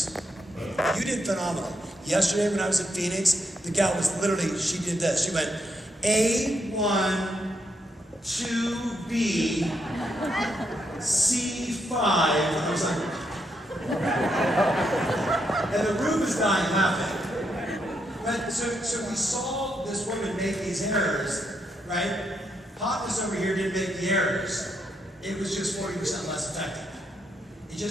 You did phenomenal. Yesterday when I was in Phoenix, the gal was literally, she did this. She went, A1, 2B, C5, and I was like, and the room is dying laughing. But so we saw this woman make these errors, right? Hotness over here didn't make the errors. It was just 40% less effective. It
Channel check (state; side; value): normal; both; correlation 0.79